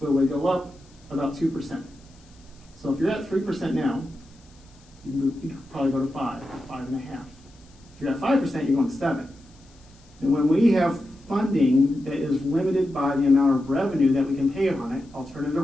it would go up about 2%. So if you're at 3% now, you could probably go to 5, 5.5. If you're at 5%, you're going to 7. And when we have funding that is limited by the amount of revenue that we can pay on it, alternative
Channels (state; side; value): noise; left; hiss, 30 dB below the sound